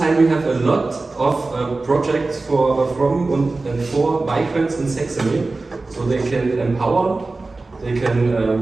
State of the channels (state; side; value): quieter; left; 3.4 dB